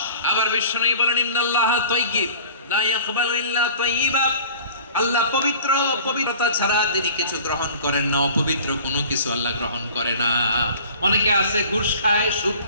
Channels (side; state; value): both; inverted; correlation -0.46